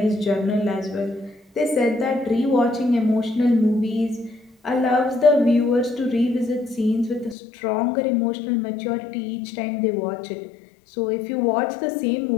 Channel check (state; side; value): drops out; right; at 7.4 s